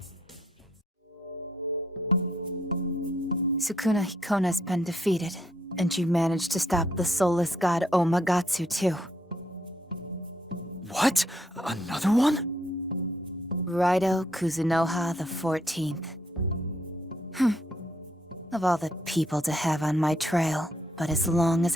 Sukuna Hikona's been defeated, and you managed to stop the soulless god Omagatsu too. What? Another one? Raido Kuzunoha the 14th. Of all the people to have on my trail, but as long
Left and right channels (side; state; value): both; normal; correlation 0.72